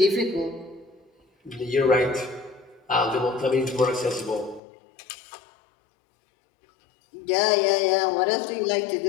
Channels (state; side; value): drops out; right; at 4.6 s